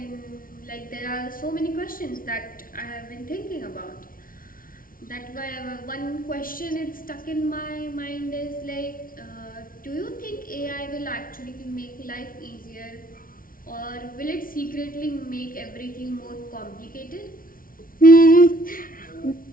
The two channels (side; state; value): right; late; 0.41 ms